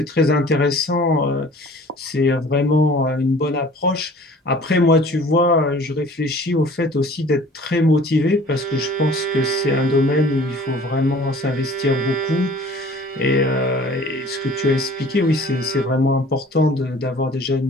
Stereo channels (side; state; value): both; normal; correlation 0.49